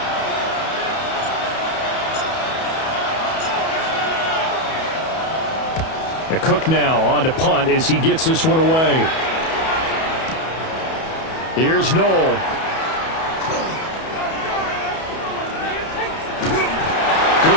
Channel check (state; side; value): late; right; 31 ms